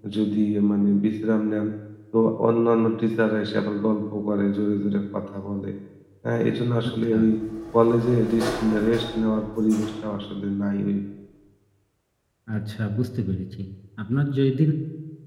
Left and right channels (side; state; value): both; identical; correlation 1.00